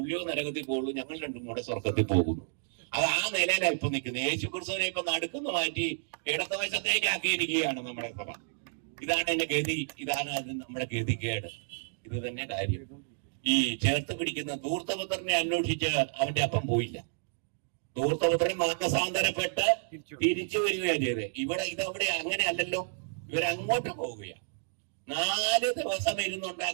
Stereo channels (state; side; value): silent; left; digital silence